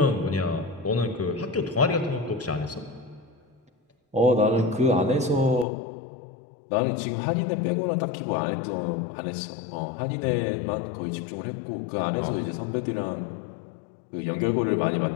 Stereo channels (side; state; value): right; drops out; at 5.7 s